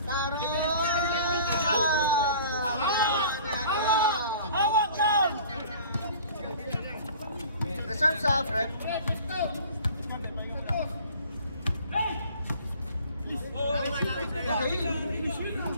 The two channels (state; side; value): inverted; both; correlation -0.47